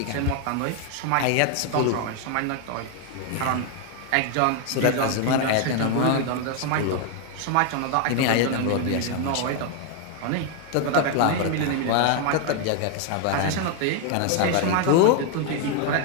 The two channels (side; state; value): both; different; correlation 0.00